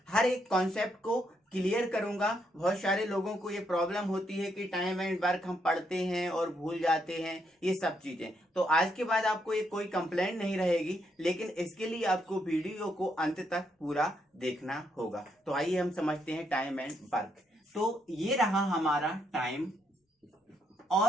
हर एक कॉन्सेप्ट को क्लियर करूंगा। बहुत सारे लोगों को ये प्रॉब्लम होती है कि टाइम एंड वर्क हम पढ़ते हैं और भूल जाते हैं, ये सब चीजें। तो आज के बाद आपको ये कोई कंप्लेंट नहीं रहेगी, लेकिन इसके लिए आपको वीडियो को अंत तक पूरा देखना होगा। तो आइए हम समझते हैं टाइम एंड वर्क। तो ये रहा हमारा टाइम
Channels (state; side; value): normal; both; correlation 0.76